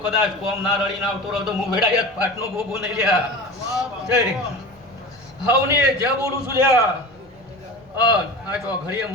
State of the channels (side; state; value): right; noise; rumble, 28 dB below the sound